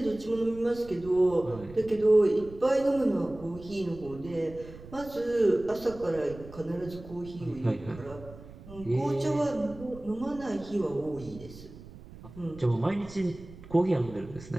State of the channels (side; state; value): right; noise; rumble, 17 dB below the sound